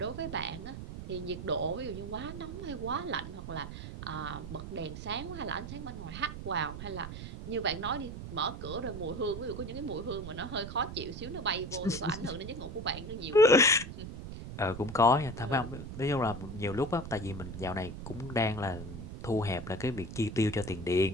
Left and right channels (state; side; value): noise; right; rumble, 9 dB below the sound